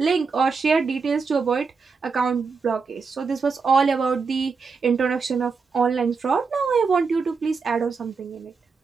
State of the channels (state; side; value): quieter; left; 5.0 dB